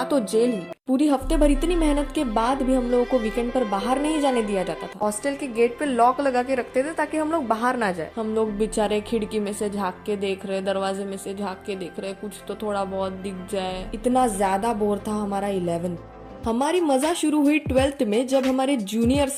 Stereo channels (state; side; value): identical; both; correlation 1.00